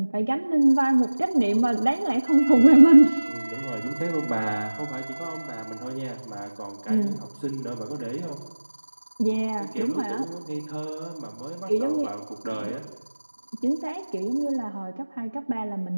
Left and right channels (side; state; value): both; inverted; correlation -1.00